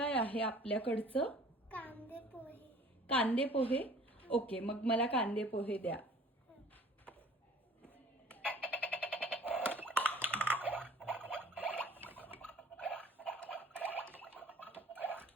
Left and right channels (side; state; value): both; normal; correlation 0.50